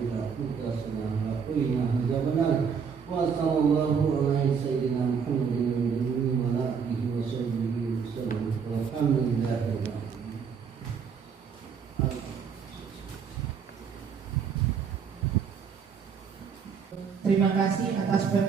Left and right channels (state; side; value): quieter; left; 6.4 dB